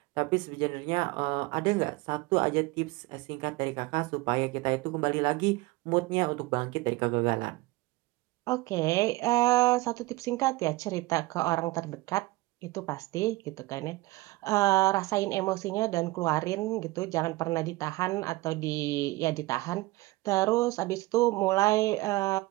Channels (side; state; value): left; quieter; 20.6 dB